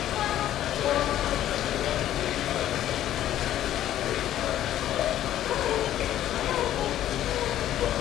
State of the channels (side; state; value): right; quieter; 12.3 dB